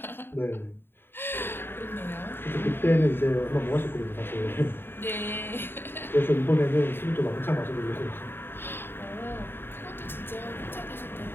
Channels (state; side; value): late; right; 0.11 ms